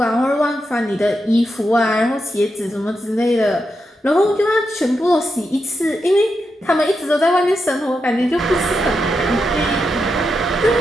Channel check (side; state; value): both; normal; correlation 0.86